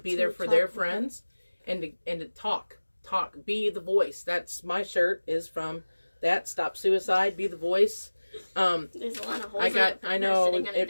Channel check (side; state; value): both; inverted; correlation -1.00